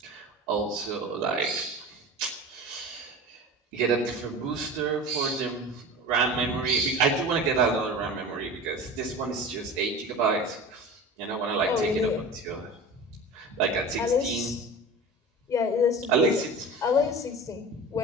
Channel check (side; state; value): both; normal; correlation 0.34